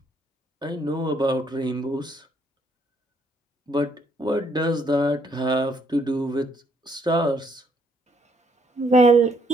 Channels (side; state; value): both; normal; correlation 0.70